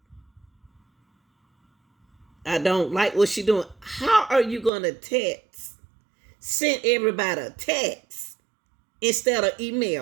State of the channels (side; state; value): left; drops out; at 4.7 s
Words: I don't like what she doing. How are you going to text? Send everybody a text instead of